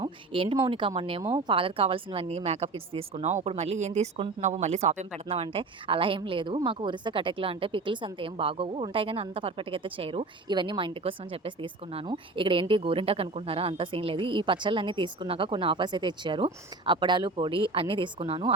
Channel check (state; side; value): quieter; left; 3.5 dB